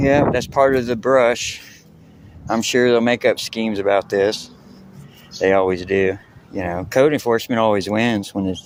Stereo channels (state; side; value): identical; both; correlation 1.00